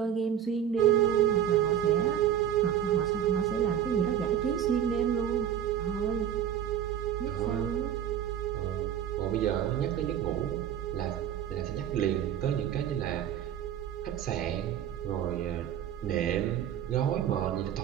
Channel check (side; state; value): left; quieter; 9.7 dB